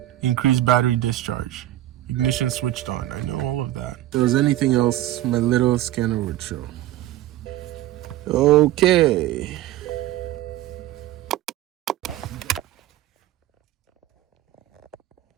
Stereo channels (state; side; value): quieter; left; 14.3 dB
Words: Increased battery discharge. Ignition switched on. I know all of that. If there was anything else, my little scanner would show. Okay.